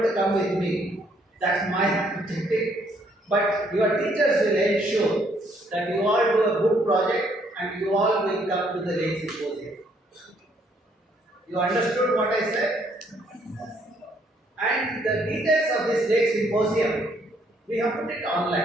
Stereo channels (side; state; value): both; normal; correlation 0.68